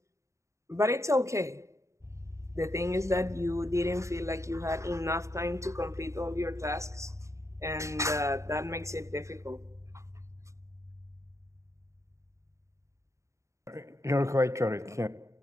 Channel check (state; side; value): late; left; 0.14 ms